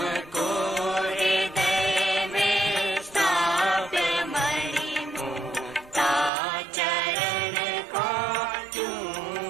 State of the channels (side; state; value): left; drops out; at 6.3 s